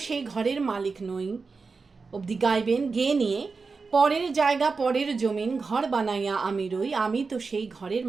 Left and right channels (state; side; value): quieter; left; 4.5 dB